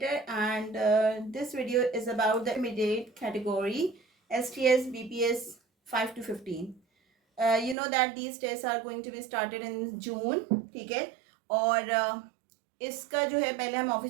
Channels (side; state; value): left; drops out; at 7.8 s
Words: and this video is about the intermediate category STS BPS 5 to 15. You know that these tests are going to be started in June, ठीक है. और इसका जो है पहले हम